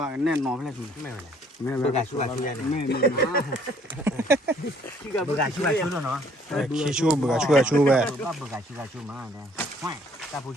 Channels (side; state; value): both; normal; correlation 0.61